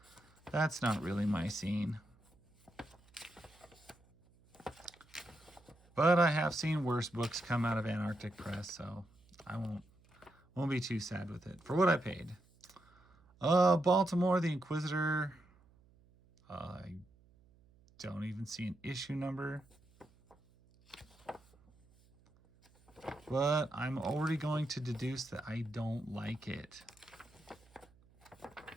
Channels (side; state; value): right; noise; hum, 29 dB below the sound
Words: that's not really my scene. But I have seen worse books come out of Antarctic Press, so I won't be too sad with it for what I paid. Baltimore the Inquisitor. I don't even see an issue number. But I'm already going to deduce that I don't like it.